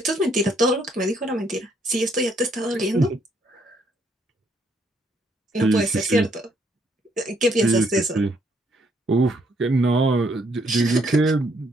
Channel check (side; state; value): both; normal; correlation 0.70